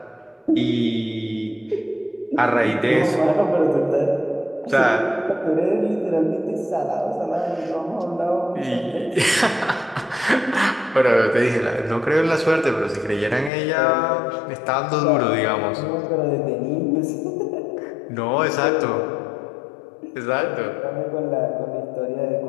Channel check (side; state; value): right; drops out; at 13.5 s